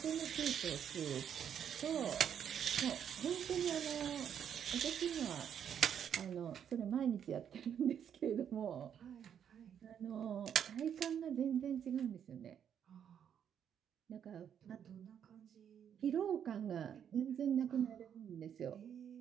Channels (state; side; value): quieter; left; 8.6 dB